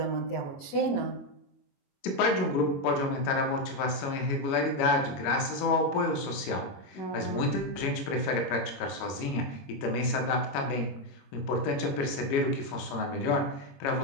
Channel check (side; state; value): right; late; 21 ms